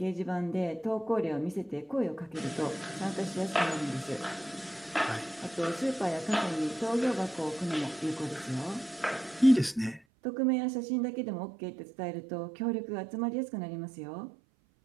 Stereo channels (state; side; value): drops out; left; at 10.0 s